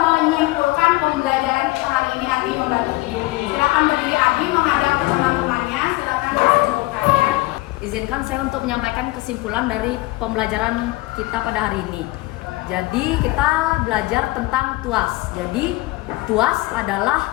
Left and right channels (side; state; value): right; quieter; 20.4 dB